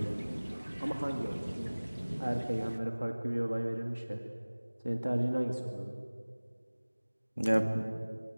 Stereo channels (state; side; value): inverted; both; correlation -1.00